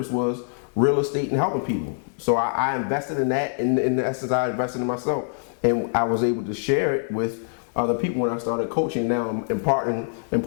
was real estate and helping people. So I invested in that. In essence, I invested in myself. And I was able to share it with other people when I started coaching. Now I'm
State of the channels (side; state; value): right; silent; digital silence